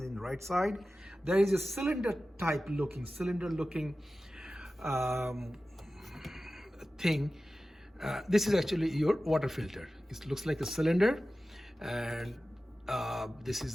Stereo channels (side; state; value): both; normal; correlation 0.95